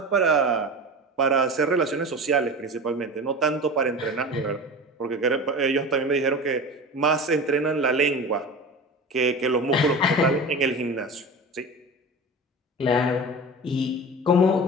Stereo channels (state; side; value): normal; both; correlation 0.32